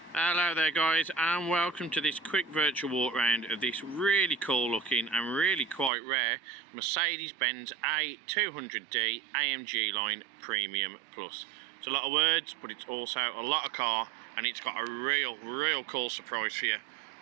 Hello there guys, and welcome to this quick virtual walk around of this really cool looking and really quite rare Mercedes-Benz A200D AMG Line Premium Plus. It's a lot of words, but it's also a lot of car, and it's got a real cool surprise for you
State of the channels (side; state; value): left; drops out; at 5.9 s